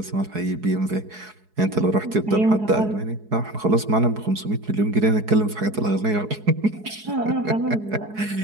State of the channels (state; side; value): late; left; 4.7 ms